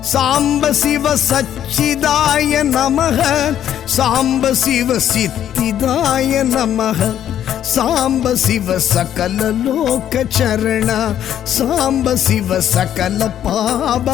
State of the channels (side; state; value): right; quieter; 10.6 dB